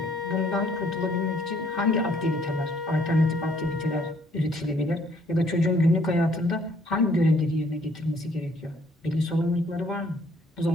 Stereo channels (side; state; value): both; normal; correlation 0.63